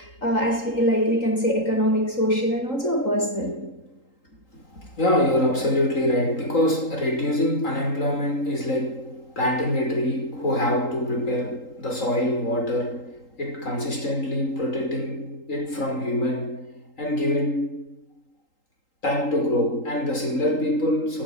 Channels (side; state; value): right; late; 3.8 ms